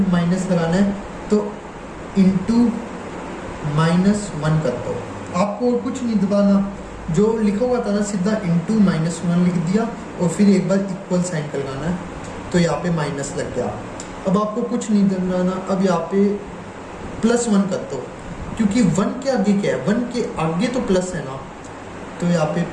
लगाना है तो इंटू -1 कर दो। आपको और कुछ नहीं दबाना, जो लिखा हुआ था ना सीधा इंटू -1 लिख दिया और फिर एक बार इक्वल साइन कर लगाना है तो यहाँ पे माइनस लग गया। अब आपको कुछ नहीं दबाना, अब यहाँ पे +1 कर दो, क्योंकि 1 के आगे क्या है? 1 के आगे तो प्लस है ना, तो यहाँ पे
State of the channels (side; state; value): both; identical; correlation 1.00